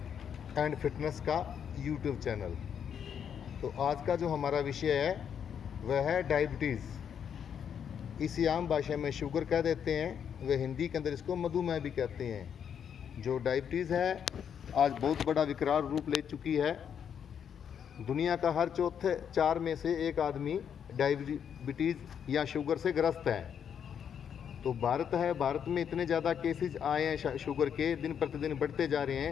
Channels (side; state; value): right; quieter; 8.1 dB